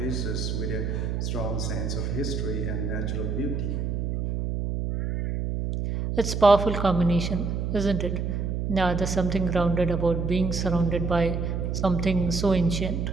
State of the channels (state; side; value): noise; right; hum, 1 dB below the sound